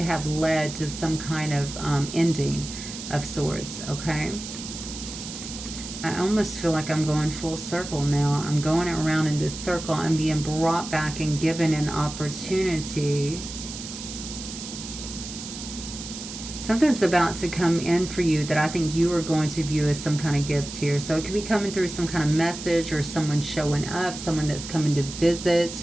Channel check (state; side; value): noise; right; hiss, 10 dB below the sound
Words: have led to some kind of ending of sorts, okay? I almost feel like I'm going full circle now. I'm going around in this circle. I'm being brought back and given an opportunity. Something's about to come in for you that I think you are going to view as some kind of gift here. So it could be coming through some kind of message or someone showing up, someone that's coming to